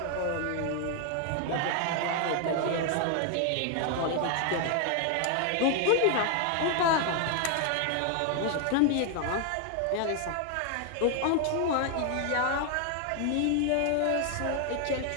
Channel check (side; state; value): both; different; correlation 0.00